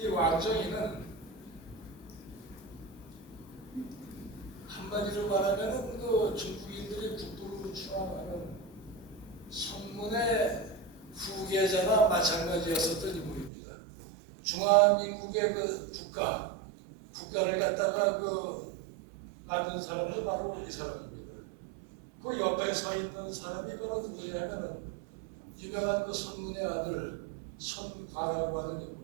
왕정이는 한마디로 말하면은 중국인들이 국부로 추앙하는 성문의 후계자나 마찬가지였었던 인물입니다. 중화민국의 국가를 갖다가 만든 사람도 바로 이 사람입니다. 그 옆에 서 있는 사람이 바로 누구냐면은 유명한 그 손문의 아들 손과라고 하는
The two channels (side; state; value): left; drops out; at 13.5 s